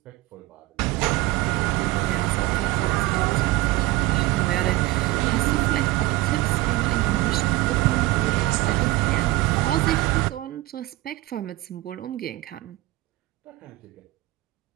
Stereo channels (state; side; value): quieter; left; 18.8 dB